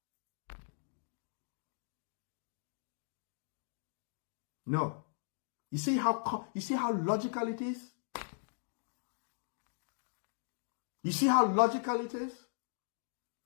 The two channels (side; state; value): right; silent; digital silence